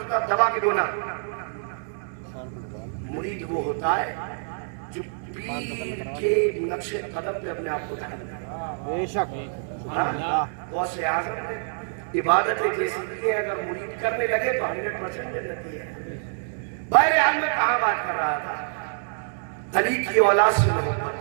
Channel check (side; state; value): left; silent; digital silence